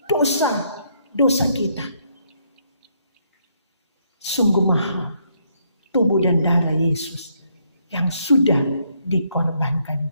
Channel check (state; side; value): inverted; both; correlation -0.72